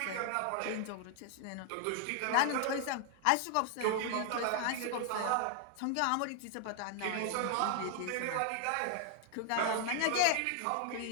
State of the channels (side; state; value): both; different; correlation 0.00